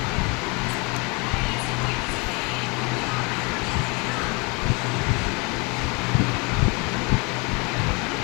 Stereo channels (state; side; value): quieter; right; 29.6 dB